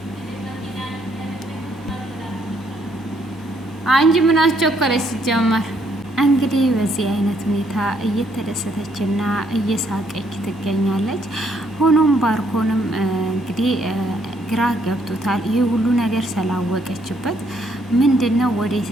አንቺ ምን አስቸኮለች ሲጀመር እንግዲህ በዚህ አይነት ሁኔታ እየተደሰተችና እየሳቀች ትገኛለች። ሆኖም ባርኮንም እንግዲህ ግራ ገብቶታል። ይህ ሁሉ ነገር ስላወቀችበት ምንድነው ወዴት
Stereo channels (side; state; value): both; normal; correlation 0.70